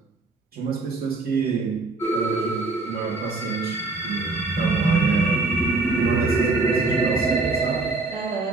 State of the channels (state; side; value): quieter; left; 3.5 dB